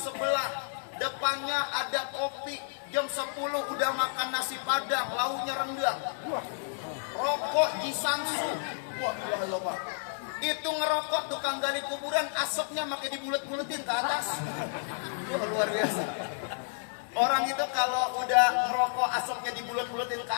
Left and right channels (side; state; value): right; silent; 57 dB below the other